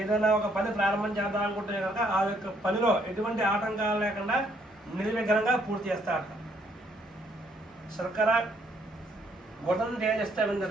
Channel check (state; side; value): normal; both; correlation 0.69